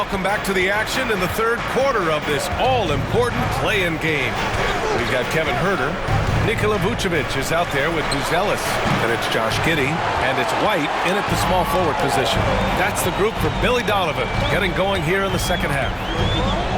back to the action in the third quarter of this all-important play-in game. We've got Kevin Huerter. Nikola Vucevic is out there with Buzelis. And it's Josh Giddey. And it's White in at the small forward position. That's the group for Billy Donovan getting going here in the second half.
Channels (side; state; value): both; identical; correlation 1.00